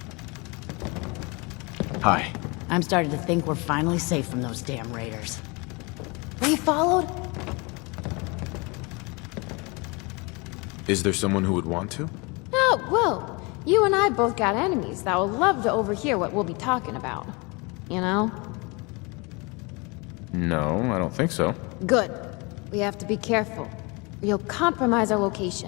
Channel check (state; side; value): quieter; right; 28.3 dB